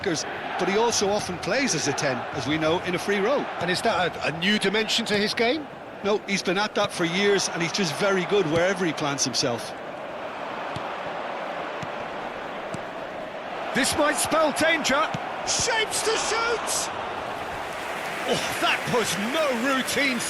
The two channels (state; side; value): identical; both; correlation 1.00